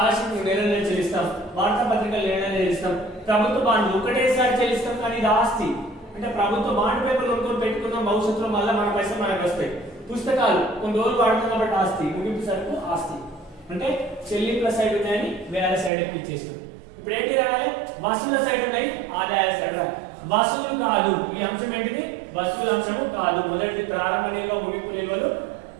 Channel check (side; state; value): left; drops out; at 15.9 s